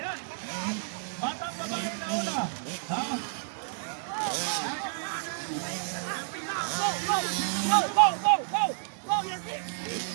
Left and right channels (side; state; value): left; silent; digital silence